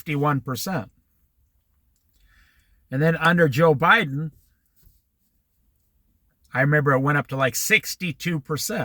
And then under Joe Biden, I remember it went up to like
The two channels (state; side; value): identical; both; correlation 1.00